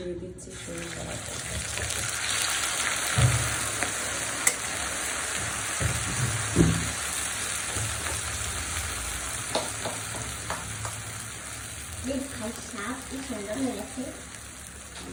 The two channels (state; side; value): identical; both; correlation 1.00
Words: দিচ্ছি সরিষা বাটা।